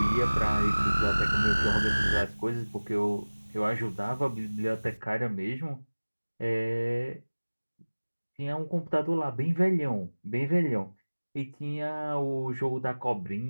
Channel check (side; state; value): both; inverted; correlation -1.00